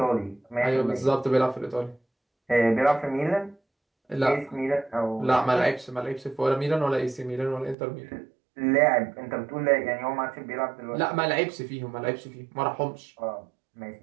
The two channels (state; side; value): drops out; left; at 7.8 s